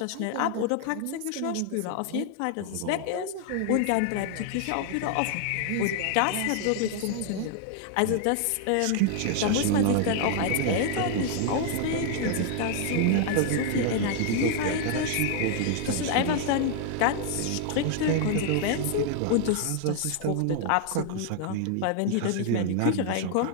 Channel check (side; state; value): both; different; correlation 0.00